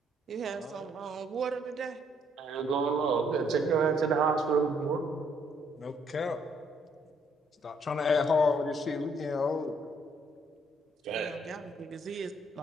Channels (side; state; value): both; normal; correlation 0.68